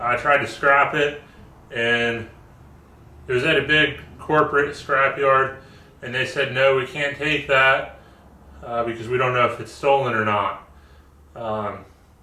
tried to scrap it, and it was at a big corporate scrapyard, and they said, no, we can't take that because we don't know if it's stolen or not.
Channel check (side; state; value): both; identical; correlation 1.00